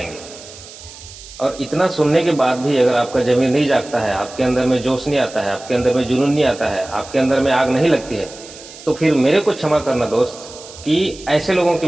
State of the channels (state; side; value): noise; right; hiss, 17 dB below the sound